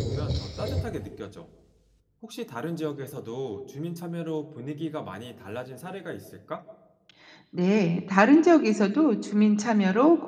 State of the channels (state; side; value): identical; both; correlation 1.00